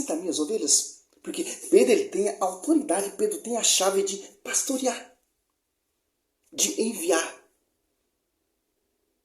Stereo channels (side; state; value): both; identical; correlation 1.00